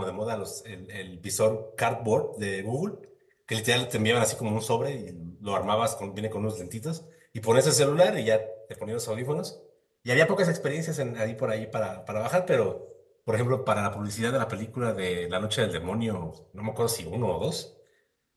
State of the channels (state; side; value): identical; both; correlation 1.00